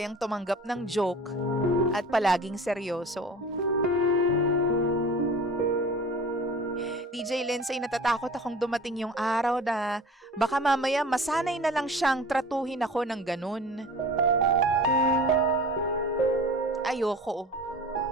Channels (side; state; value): both; normal; correlation 0.40